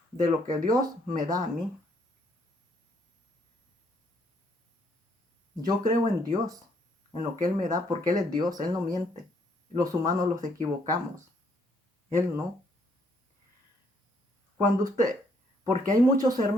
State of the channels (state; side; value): normal; both; correlation 0.69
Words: de lo que Dios me da a mí. Yo creo en Dios, en lo que Él me da, porque Él es Dios, Él no miente. Los humanos los equivocamos, Él no. Porque hay muchos